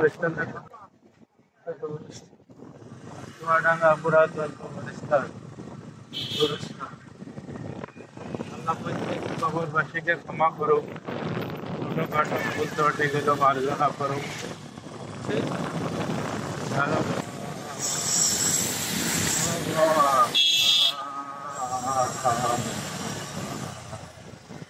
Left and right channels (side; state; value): both; identical; correlation 1.00